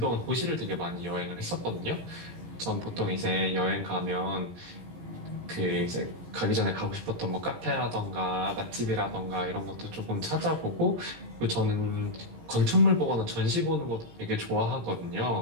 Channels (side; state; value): left; late; 18 ms